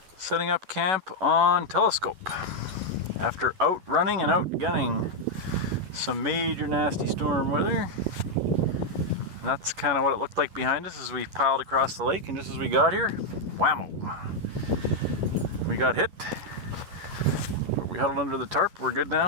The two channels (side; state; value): left; late; 11 ms